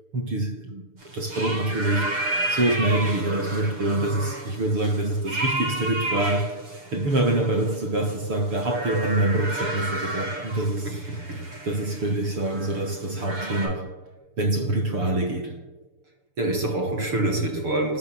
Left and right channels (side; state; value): left; late; 6.8 ms